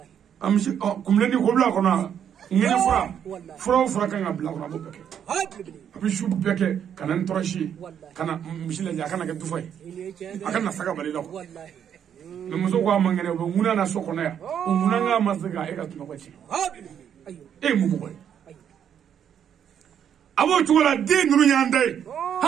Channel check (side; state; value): left; quieter; 8.8 dB